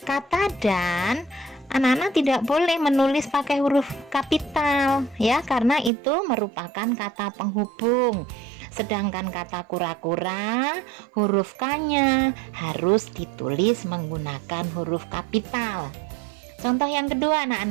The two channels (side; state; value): left; drops out; at 5.9 s